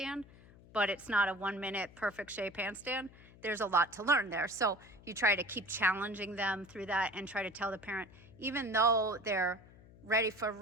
but it's not a 1 minute perfect shape handstand, there's a lot to learn there. So you try to keep challenging them through that and try to tell the parent, even though they're ready for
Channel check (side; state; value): left; noise; hum, 22 dB below the sound